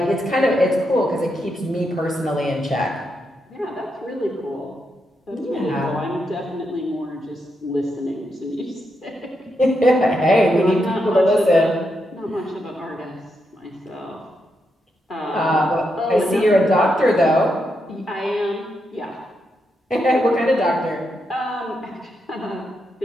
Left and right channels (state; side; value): normal; both; correlation 0.83